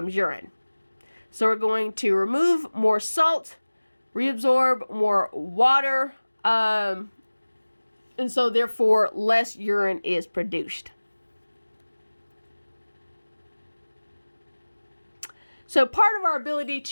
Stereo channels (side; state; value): both; inverted; correlation -1.00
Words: urine. So we're going to remove more salt, reabsorb more water, and so therefore less urine is produced. So part of our ability